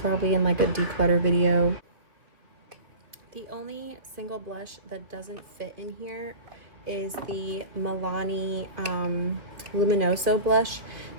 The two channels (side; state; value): left; late; 2.5 ms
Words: in like a declutter video. The only single blush that doesn't fit in here is the Milani Luminoso blush.